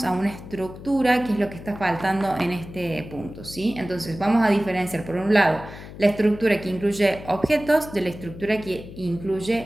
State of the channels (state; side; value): noise; left; hum, 14 dB below the sound